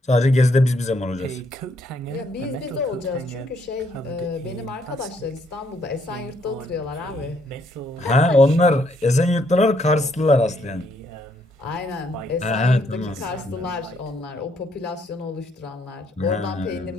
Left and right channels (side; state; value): both; normal; correlation 0.71